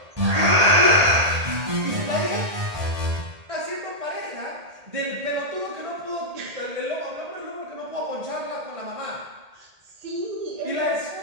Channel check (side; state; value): left; late; 1.8 ms